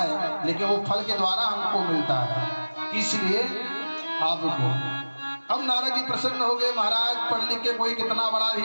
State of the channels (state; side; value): inverted; both; correlation -1.00